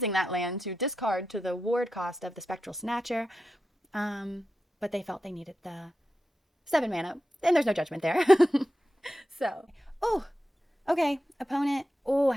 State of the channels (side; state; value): both; normal; correlation 0.91